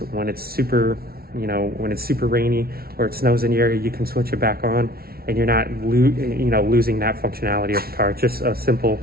when it's super, when it's super rainy or it snows in the area, you can switch it back on, and you're not losing that functionality of the car. It's just a simple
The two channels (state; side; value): late; left; 0.44 ms